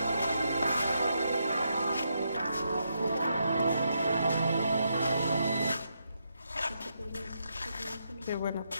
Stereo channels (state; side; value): inverted; both; correlation -0.81